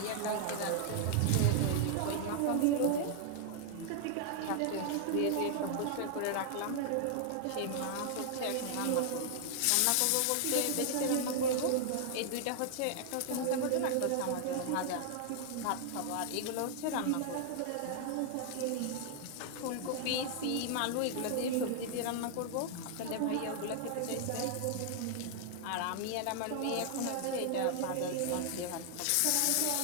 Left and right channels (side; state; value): both; different; correlation 0.00